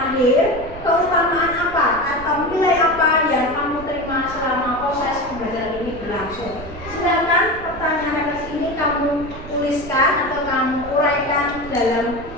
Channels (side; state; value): right; noise; rumble, 14 dB below the sound